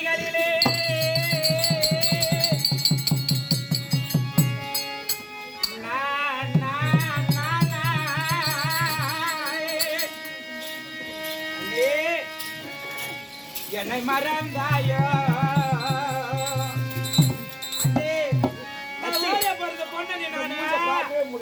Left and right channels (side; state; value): both; identical; correlation 1.00